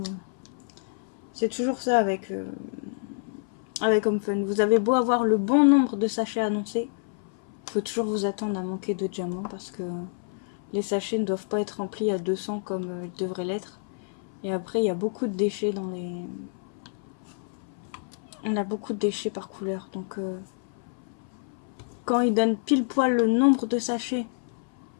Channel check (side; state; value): right; silent; 58 dB below the other